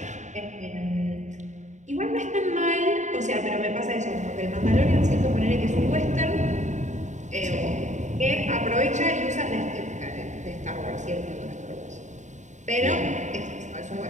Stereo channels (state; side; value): late; left; 0.35 ms